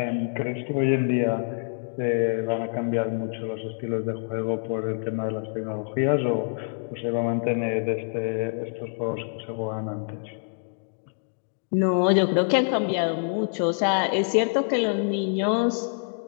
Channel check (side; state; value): right; silent; digital silence